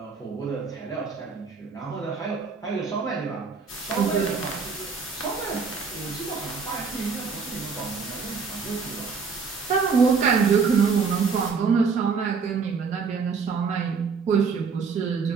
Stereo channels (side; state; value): left; quieter; 5.3 dB